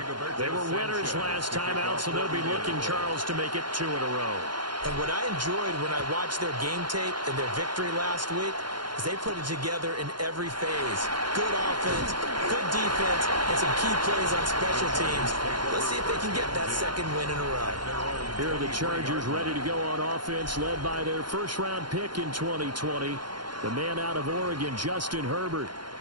They were winners last time out, so they'll be looking, Charles, to make it 2 in a row. And what I enjoyed when I watched their game tape and their victory last week is they put it together in every phase. Good offense, good defense, and some key plays on special teams. Let's see if they can get that second win in a row. Here are the Chargers ready to go on offense, led by their first-round pick in 2020, the man out of Oregon, Justin Herbert.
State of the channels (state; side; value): late; left; 0.71 ms